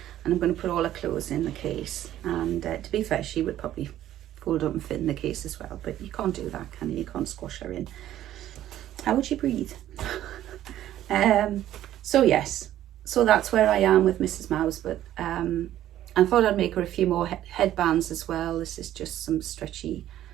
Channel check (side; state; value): left; quieter; 12.6 dB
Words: and I'm going to put all her clothes in the case. And to be fair, she would probably fold up and fit in the case as well, but you can't do that, can you? You can't squash her in. How would she breathe? So yes, so that's where I am with Mrs. Mouse. But I thought I'd make her a few more headbands as well. This is just some stretchy